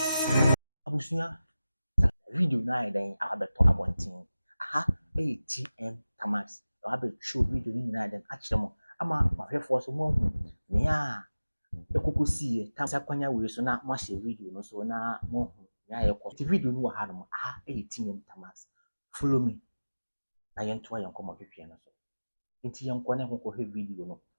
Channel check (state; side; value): inverted; both; correlation -0.97